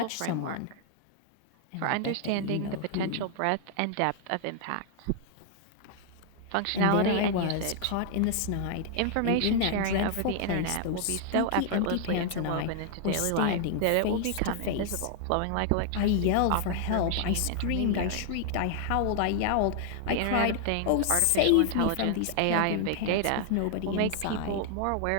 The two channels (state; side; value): different; both; correlation 0.00